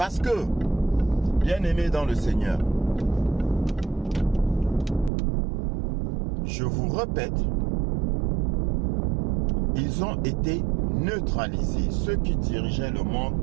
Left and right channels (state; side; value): drops out; left; at 5.1 s